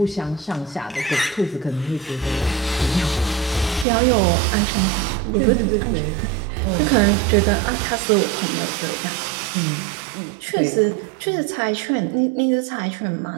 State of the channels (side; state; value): left; drops out; at 3.9 s